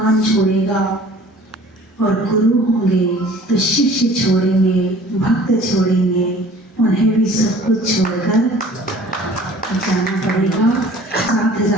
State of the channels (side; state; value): both; normal; correlation 0.49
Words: छोड़ेगा। और गुरु होंगे तो शिष्य छोड़ेंगे, भक्त छोड़ेंगे, उन्हें भी सब कुछ छोड़कर जाना पड़ेगा। साथ